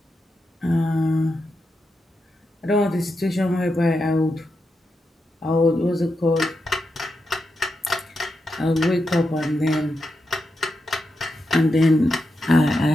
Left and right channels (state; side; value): normal; both; correlation 0.86